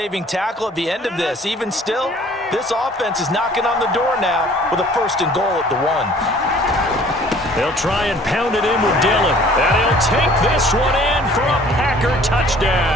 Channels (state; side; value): normal; both; correlation 0.53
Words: tackle at the end of this. Even still, this offense is knocking on the door now with a 1st and goal at the 1. They'll try and pound it in with Dillon, and he'll take this one in for a Packer